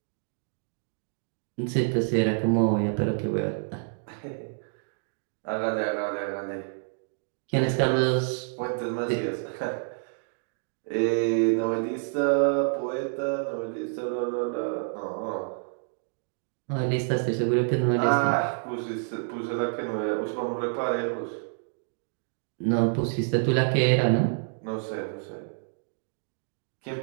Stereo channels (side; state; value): left; silent; digital silence